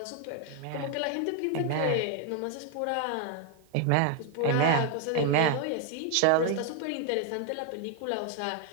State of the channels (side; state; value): both; different; correlation 0.00